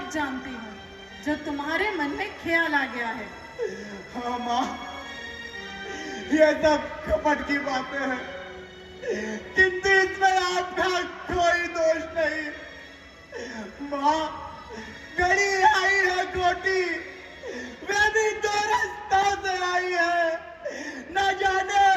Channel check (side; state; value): both; identical; correlation 1.00